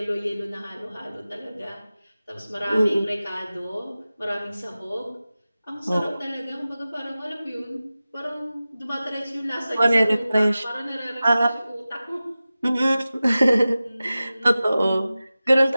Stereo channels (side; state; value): both; inverted; correlation -0.96